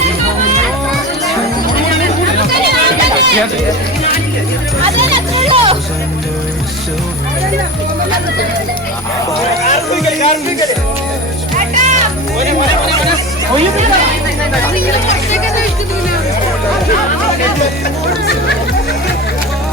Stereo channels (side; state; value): both; normal; correlation 0.29